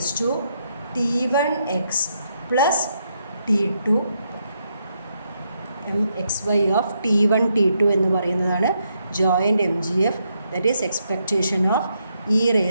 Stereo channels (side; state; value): both; inverted; correlation -0.78